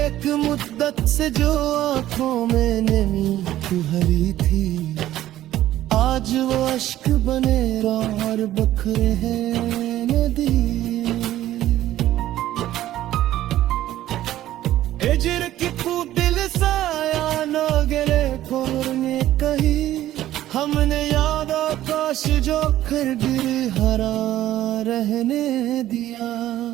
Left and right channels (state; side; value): quieter; left; 13.7 dB